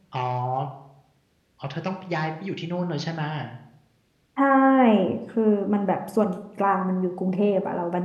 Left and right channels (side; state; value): both; identical; correlation 1.00